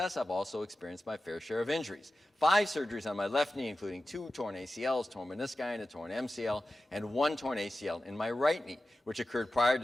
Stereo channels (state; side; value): normal; both; correlation 0.94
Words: I've also experienced my fair share of injuries. 5 surgeries on my left knee, including 2 torn ACLs, torn menisci, and a torn MCL, and 1 torn ACL in my right knee, which occurred prior